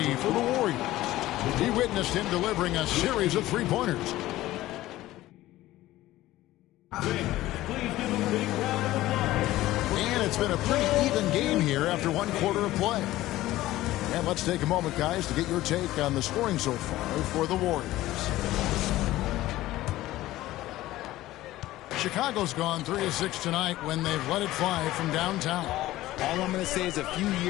for the Warriors. He witnessed him delivering a series of three-pointers. And it's been a pretty even game here after 1 quarter of play. And let's take a moment, guys, to get your take on the scoring so far for the Warriors. Chicago's gone 3 of 6 tonight when they've let it fly from downtown. All I'm going to say is a few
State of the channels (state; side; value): quieter; right; 16.1 dB